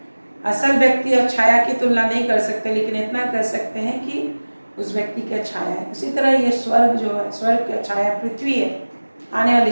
असल व्यक्ति और छाया की तुलना नहीं कर सकते, लेकिन इतना कर सकते हैं कि उस व्यक्ति का छाया है। उसी तरह ये स्वर्ग जो है, स्वर्ग का छाया पृथ्वी है, आने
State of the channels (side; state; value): both; inverted; correlation -1.00